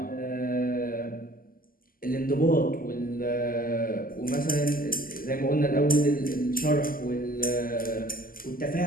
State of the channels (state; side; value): late; right; 0.42 ms